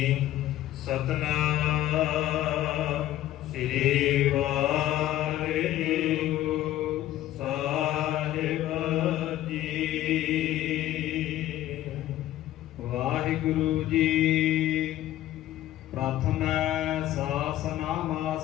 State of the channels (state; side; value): quieter; right; 13.8 dB